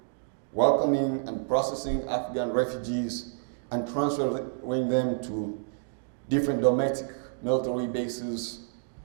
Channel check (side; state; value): left; silent; digital silence